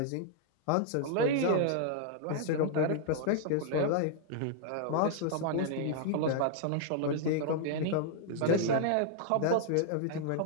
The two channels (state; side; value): different; both; correlation -0.01